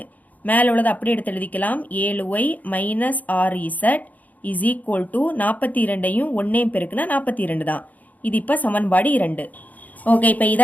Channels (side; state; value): right; late; 0.079 ms